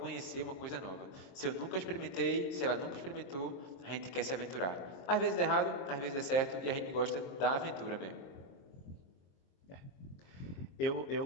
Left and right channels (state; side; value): late; right; 23 ms